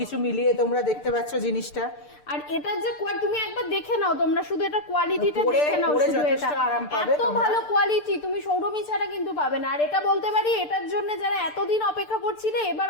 মিলিয়ে তোমরা দেখতে পাচ্ছ জিনিসটা। আর এটার যে তুমি একবার দেখে নাও, তোমরা শুধু এটা কোয়ালিটিটা দেখে নাও, শুধু এটা এত ভালো কোয়ালিটি তুমি সৌরভী ছাড়া কিন্তু পাবে না। আর এটা বলতে পারি, এটার জন্য যারা এতদিন অপেক্ষা করছিলে, এবার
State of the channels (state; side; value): late; right; 6.8 ms